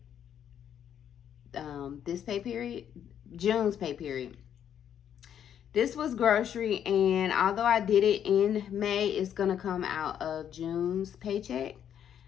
this pay period, June's pay period. This was grocery, and although I did it in May, it's gonna come out of June's paycheck.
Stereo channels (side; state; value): right; quieter; 9.3 dB